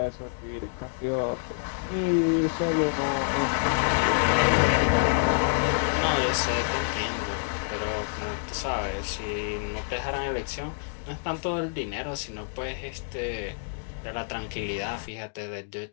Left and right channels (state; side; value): silent; right; digital silence